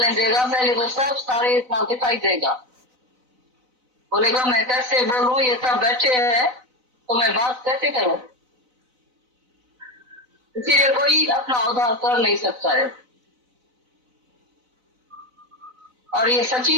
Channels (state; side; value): late; left; 4.0 ms